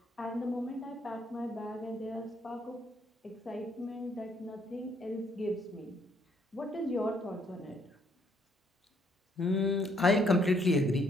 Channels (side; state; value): both; normal; correlation 0.68